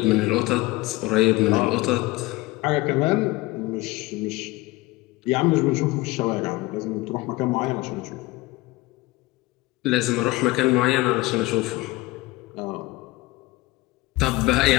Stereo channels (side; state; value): right; quieter; 20.3 dB